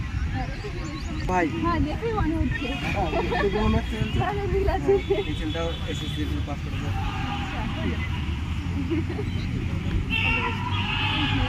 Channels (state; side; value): identical; both; correlation 1.00